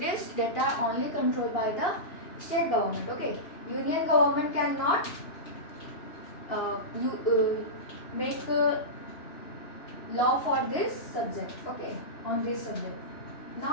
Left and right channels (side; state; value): right; late; 2.9 ms